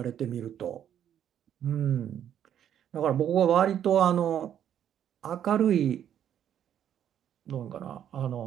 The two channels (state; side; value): quieter; left; 9.9 dB